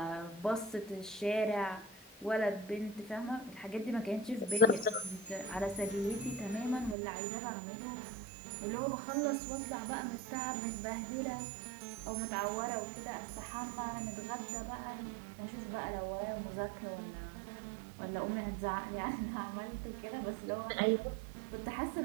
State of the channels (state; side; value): drops out; left; at 7.0 s